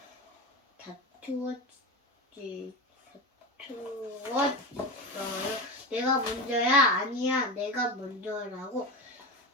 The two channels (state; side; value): normal; both; correlation 0.22